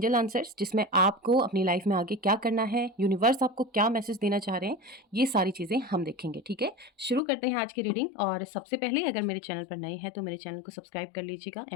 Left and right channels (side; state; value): right; drops out; at 7.2 s